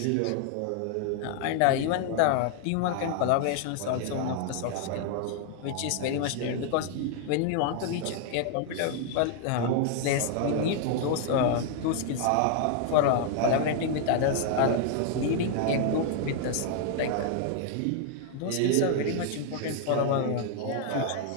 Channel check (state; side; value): different; both; correlation 0.00